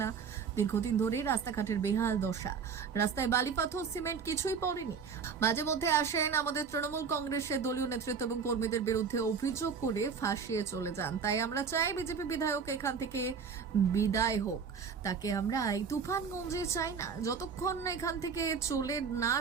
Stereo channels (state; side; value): quieter; left; 6.0 dB